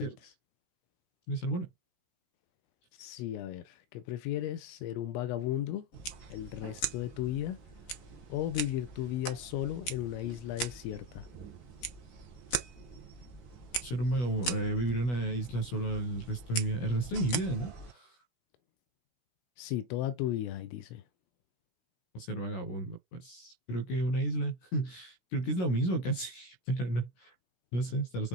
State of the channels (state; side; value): late; right; 16 ms